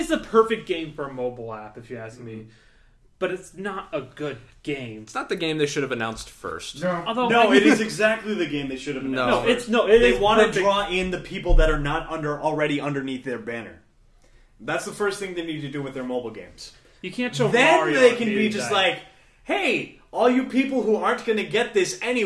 the perfect game for a mobile app, if you ask me. But it's not a good game. It's not the game they should have announced first. No. Although No, it is exactly the game they should have announced. No. It They is want to perfect. draw in the people that are not already underneath their banner. That's the first thing they need to do with their mobile games. You can't show Then Mario they on can be Game just Day. like, hey, all you people who aren't going to get this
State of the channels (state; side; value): identical; both; correlation 1.00